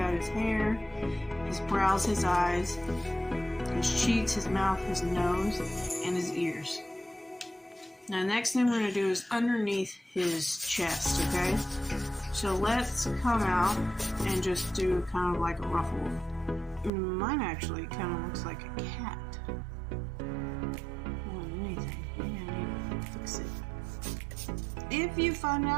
his hair, his brows, his eyes, his cheeks, his mouth, his nose, and his ears. Now, next thing we're going to do is underneath his chest, okay? So let's come out and just do kind of like a ruffle. Mine actually kind of looks like a cat. More than anything. Maybe I need to fix it. If you find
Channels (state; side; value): drops out; left; at 16.9 s